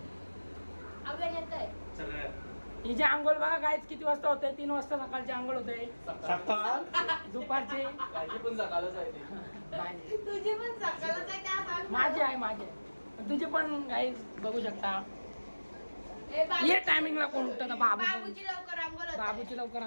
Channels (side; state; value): both; inverted; correlation -1.00